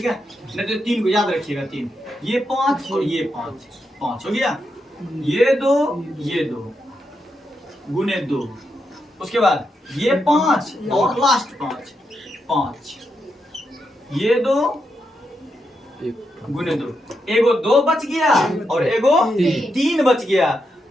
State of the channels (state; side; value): normal; both; correlation 0.84